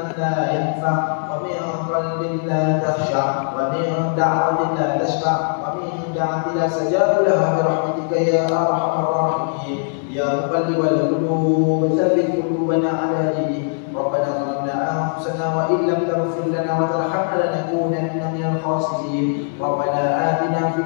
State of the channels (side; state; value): right; silent; digital silence